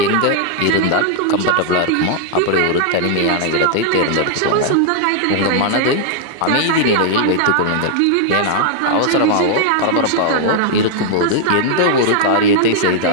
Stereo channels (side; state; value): both; different; correlation 0.00